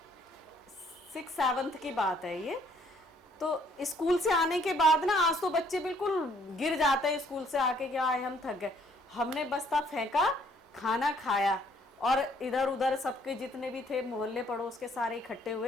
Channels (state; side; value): normal; both; correlation 0.64